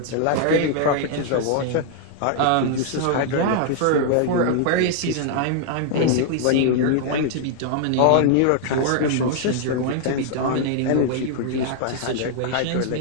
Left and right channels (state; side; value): different; both; correlation 0.00